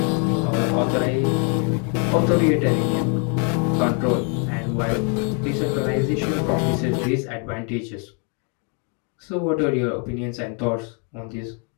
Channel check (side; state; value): right; quieter; 37.0 dB